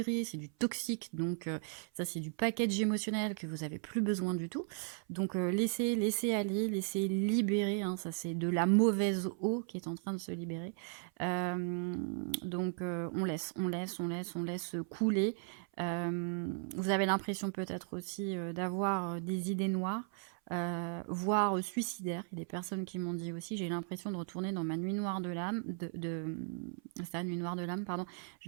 c'est du toxique, donc ça, c'est du package émotionnel que vous avez plus besoin du tout. Donc laissez aller, laissez libérer, hein, ça c'est de la mauvaise eau qui est en train de se libérer. Donc on laisse couler. Vous avez l'impression peut-être aussi d'avoir des idées noires, voire suicidaires. Il y a des personnes qui m'ont dit aussi, j'ai l'impression de retourner dans ma nuit noire de l'âme, c'est ça, nuit noire de l'âme, pardon,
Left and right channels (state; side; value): silent; left; 54 dB below the other